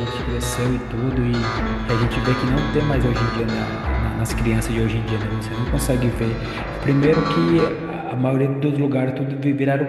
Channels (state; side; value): identical; both; correlation 1.00